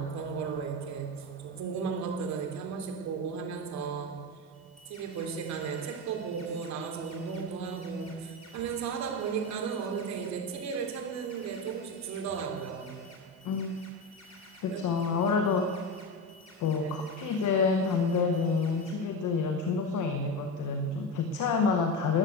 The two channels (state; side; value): normal; both; correlation 0.19